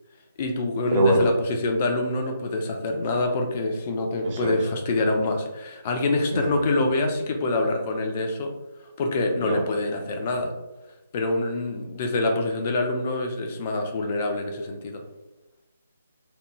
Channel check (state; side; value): inverted; both; correlation -0.70